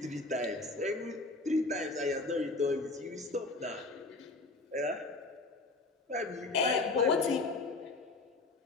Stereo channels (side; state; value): right; quieter; 3.3 dB